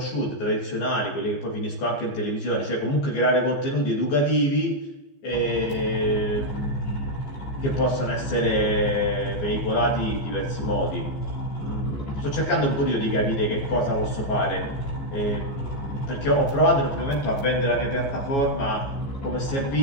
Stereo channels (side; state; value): right; late; 14 ms